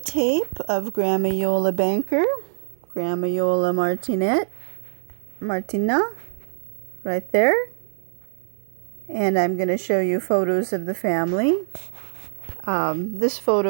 of Grandma Iole Banker, Grandma Iole Martinat, right there. And I'm going to show you photos of the family. This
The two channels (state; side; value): silent; left; digital silence